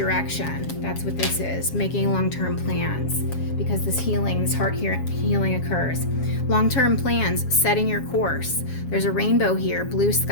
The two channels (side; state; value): right; late; 7.3 ms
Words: That's what this is, making long-term plans, because this healing, this heart healing occurs. Long-term plans, setting your course. There's a rainbow here, blue